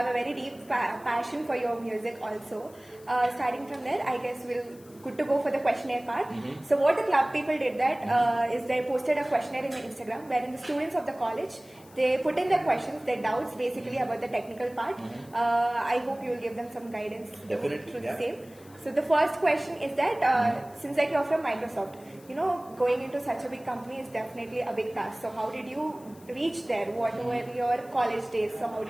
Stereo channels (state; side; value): noise; left; hiss, 25 dB below the sound